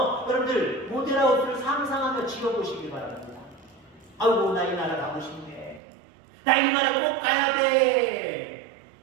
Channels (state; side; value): drops out; left; at 5.8 s